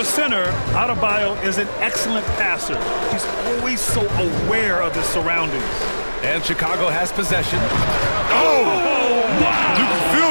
a center, Adebayo is an excellent passer. He's always so aware of his surroundings. And Chicago has possession. Oh! Wow! You can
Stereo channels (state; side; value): inverted; both; correlation -1.00